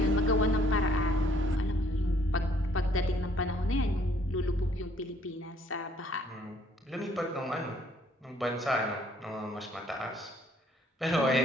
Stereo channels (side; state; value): both; normal; correlation 0.63